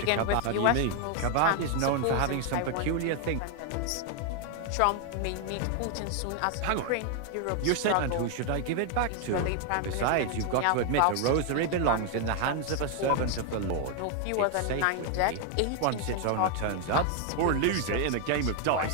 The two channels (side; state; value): both; different; correlation 0.00